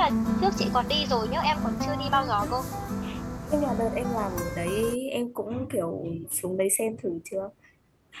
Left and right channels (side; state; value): both; identical; correlation 1.00